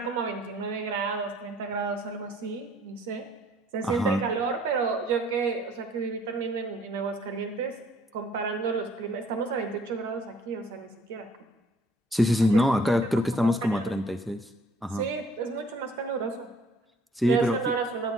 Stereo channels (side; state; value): both; normal; correlation 0.59